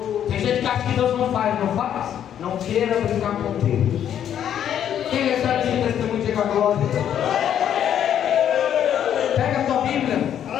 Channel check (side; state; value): right; quieter; 9.8 dB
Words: Tem gente que acha que Deus não faz, não faz? Não queira brincar com Deus. Quem recebe esse testemunho, diga glória.